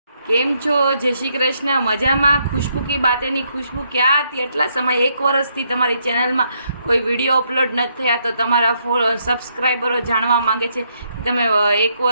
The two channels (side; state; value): both; inverted; correlation -0.75